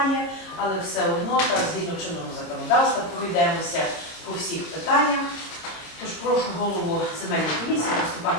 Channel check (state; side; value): late; right; 26 ms